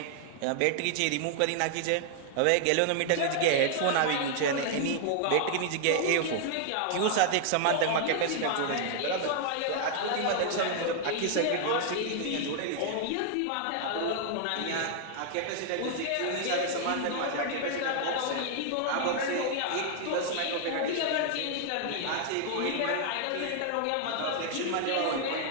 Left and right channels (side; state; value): both; different; correlation 0.00